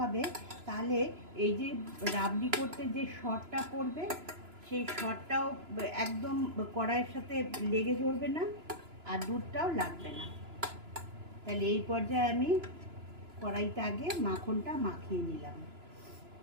তাহলে এই যে রাবড়ি করতে যে সরটা পড়বে সেই সরটাও একদম কড়াইয়ের সাথে লেগে ধরবে না, আর দুধটাও লাগবে না। তাহলে এই পর্যায়ে আমি কড়াইতে আগে মাখনটা মাখিয়ে নিলাম।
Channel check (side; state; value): left; late; 2.9 ms